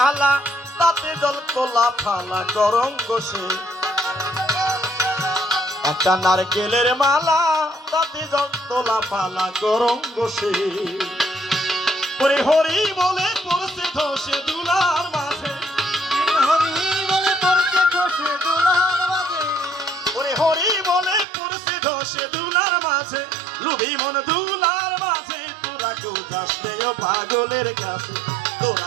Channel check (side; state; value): left; drops out; at 21.2 s